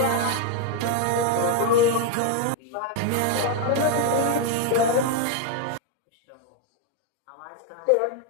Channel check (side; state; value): both; different; correlation 0.01